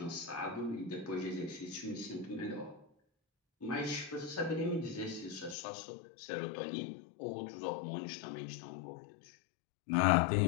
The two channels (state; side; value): drops out; right; at 5.6 s